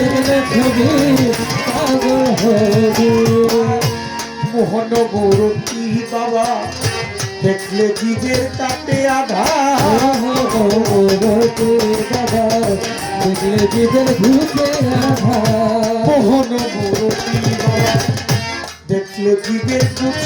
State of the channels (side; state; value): both; identical; correlation 1.00